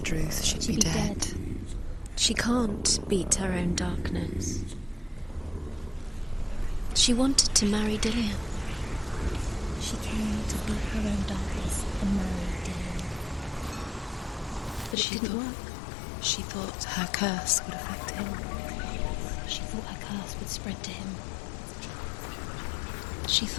Druth, she'd be dead. She can't beat her own darkness. She wanted to marry Dillian. She came to beat her own darkness and marry Dylan. But it didn't work. She thought her curse would affect him. She thought her curse would spread to him. She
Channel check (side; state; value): right; drops out; at 15.0 s